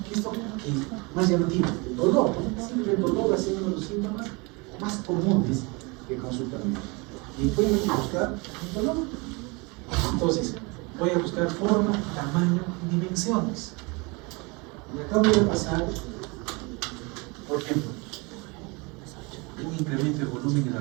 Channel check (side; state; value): left; quieter; 28.0 dB